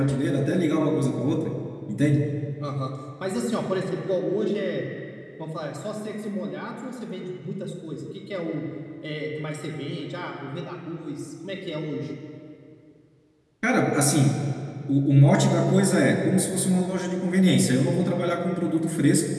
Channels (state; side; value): identical; both; correlation 1.00